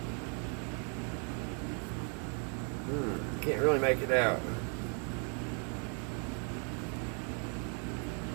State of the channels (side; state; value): left; quieter; 39.7 dB